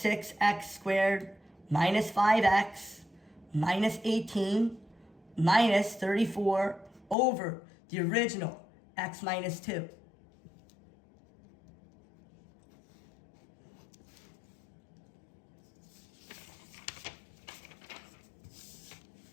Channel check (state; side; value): drops out; right; at 7.2 s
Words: squared minus 5x minus 18 minus 34 over the original x minus 2.